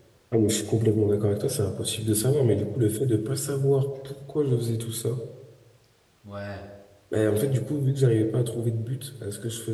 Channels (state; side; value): identical; both; correlation 1.00